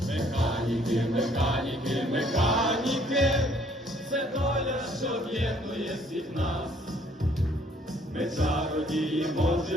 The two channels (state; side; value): normal; both; correlation 0.62